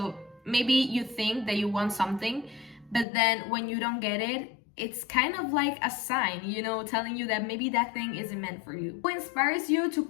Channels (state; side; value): drops out; right; at 3.1 s